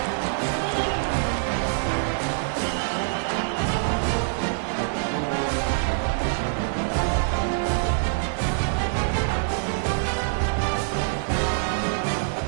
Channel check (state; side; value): silent; left; digital silence